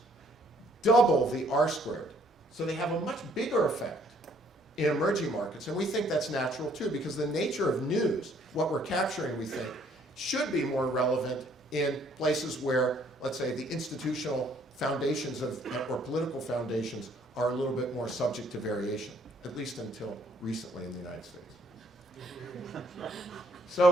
double the R-squared. So they have a much bigger effect in emerging markets. And we think that's natural too, because the nature of news, what we're capturing, we think, should be more relevant in places where, let's say, the institutional foundations of, or political foundations are a little bit more subject to variation, at least until recently in the United States.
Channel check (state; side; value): normal; both; correlation 0.64